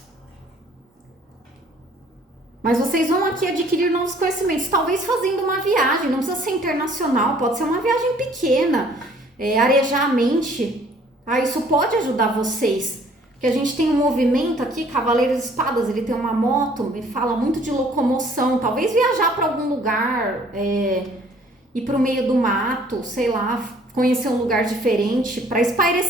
Mas vocês vão aqui adquirir novos conhecimentos, talvez fazendo uma viagem, não precisa ser internacional, pode ser uma viagem pequena, arejar a mente, tá? Isso pode ajudar vocês, porque a gente tem um movimento aqui, Cavaleiro de Espadas, ele tem uma moto, ele fala muito de locomoção, talvez viajar para algum lugar, ir para o meio do mato, sei lá, conhecer um lugar diferente, para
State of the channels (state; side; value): normal; both; correlation 0.57